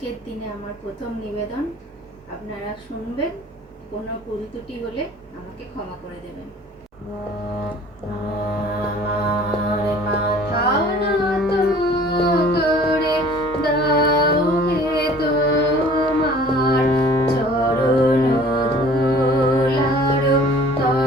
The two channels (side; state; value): both; normal; correlation 0.50